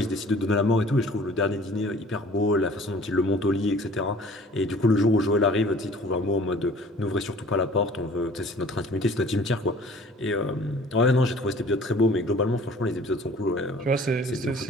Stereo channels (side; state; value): both; normal; correlation 0.50